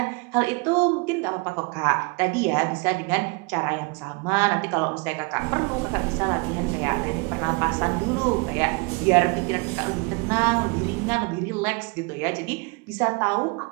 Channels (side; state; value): left; quieter; 28.5 dB